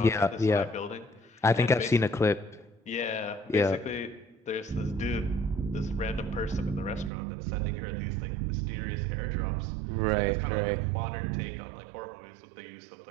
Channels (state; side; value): drops out; left; at 7.1 s